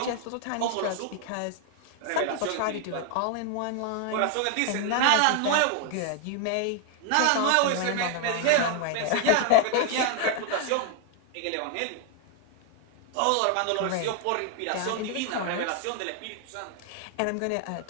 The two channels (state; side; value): different; both; correlation 0.00